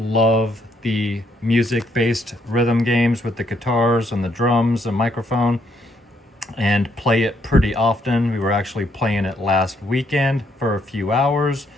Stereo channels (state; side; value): normal; both; correlation 0.72